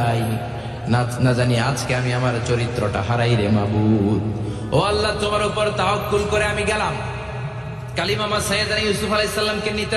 না জানি আজকে আমি আমার চরিত্রটা হারাই রে মাবুদ। ও আল্লাহ, তোমার উপর তাওয়াক্কুল করে আমি গেলাম। কালিমামা সাইয়েদনা ইউসুফ আলাইহিস সালামকে নিতে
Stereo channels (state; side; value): identical; both; correlation 1.00